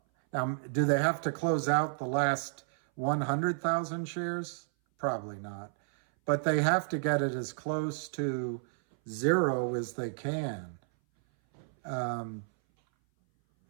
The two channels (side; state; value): left; silent; 57 dB below the other